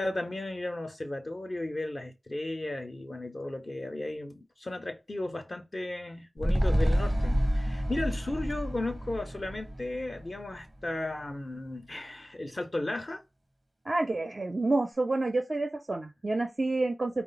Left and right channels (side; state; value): both; normal; correlation 0.97